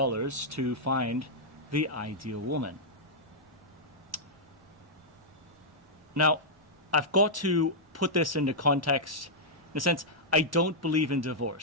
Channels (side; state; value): both; normal; correlation -0.08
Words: find the ideal woman. Now, I've got to put this into context. In a sense, I don't believe in